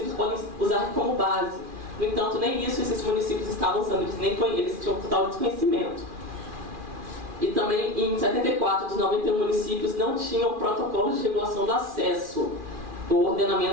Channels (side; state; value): left; late; 2.4 ms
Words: podem usar como base. No entanto, nem isso esses municípios estavam usando, eles tinham total desconhecimento. E também, em 74 dos 91 municípios, não tinham protocolos de regulação do acesso, o